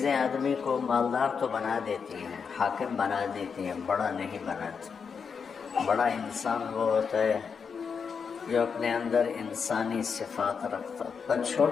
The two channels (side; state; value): right; quieter; 6.1 dB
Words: آدمی کو مالدار تو بنا دیتی ہیں، حاکم بنا دیتی ہیں، بڑا نہیں بناتی۔ بڑا انسان وہ ہوتا ہے جو اپنے اندر انسانی صفات رکھتا، پر